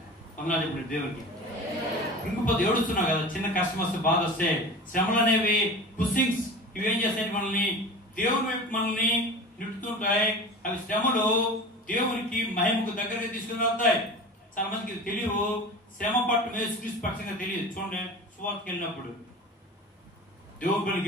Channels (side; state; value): both; normal; correlation 0.35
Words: అన్నా చెప్పండి దేవుడికి. ఇంకపోతే ఏడుస్తున్నావు కదా, చిన్న కష్టం వస్తే, బాధ వస్తే, శ్రమలు అనేవి పుషింగ్స్. ఇవి ఏం చేస్తాయి, మనల్ని దేవుని వైపు మనల్ని నిట్టుతుంటాయి. అవి శ్రమలు దేవునికి మహిమకు దగ్గరగా తీసుకుని వెళ్తాయి. చాలా మందికి తెలియవు, శ్రమ పట్టు యేసుక్రీస్తు పక్షంగా తెలియదు. చూడండి, సువార్తకి వెళ్ళినప్పుడు, దేవుని పనికి